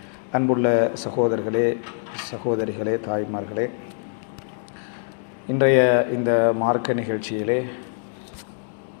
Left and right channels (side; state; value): right; silent; digital silence